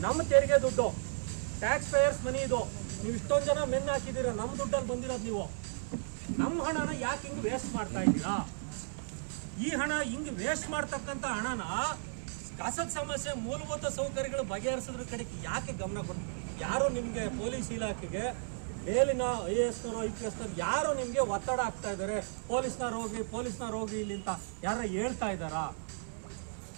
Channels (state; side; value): silent; left; 55 dB below the other